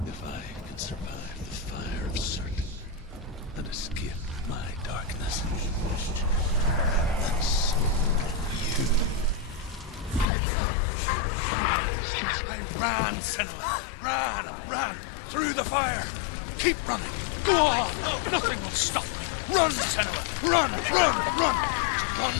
if I can survive the fire of certain and escape my darkness, then so you. Ran, Senua! Ran! Through the fire! Keep running! Go on! Nothing will stop! Run, Senua! Run! Run,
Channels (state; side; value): drops out; right; at 10.2 s